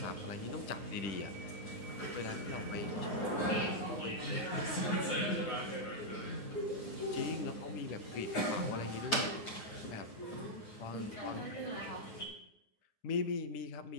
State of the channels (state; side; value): late; right; 9.6 ms